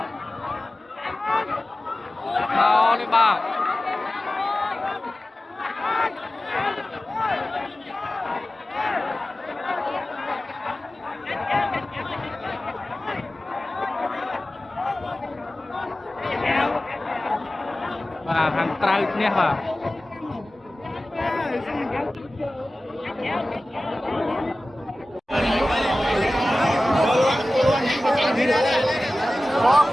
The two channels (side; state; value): both; normal; correlation 0.96